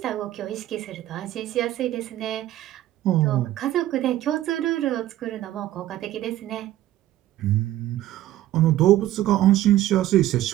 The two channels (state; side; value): quieter; left; 13.9 dB